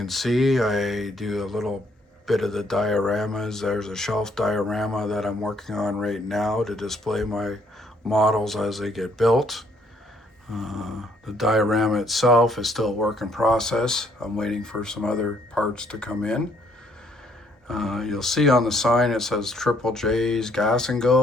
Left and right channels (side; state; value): both; normal; correlation 0.67